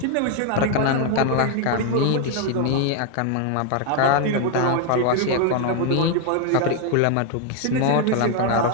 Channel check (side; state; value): both; different; correlation 0.01